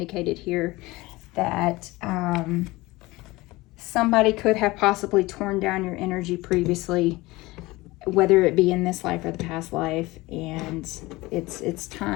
here that somebody could have possibly torn down your energy previously, whether it be in this life or the past life. And it's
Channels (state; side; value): quieter; right; 20.6 dB